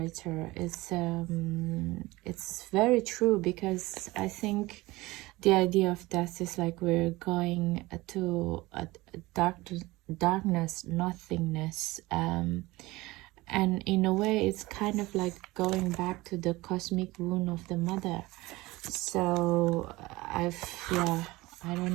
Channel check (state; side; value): quieter; left; 20.4 dB